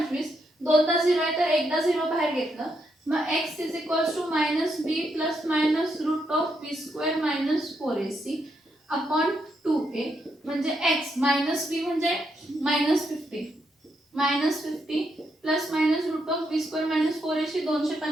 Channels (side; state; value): both; normal; correlation 0.79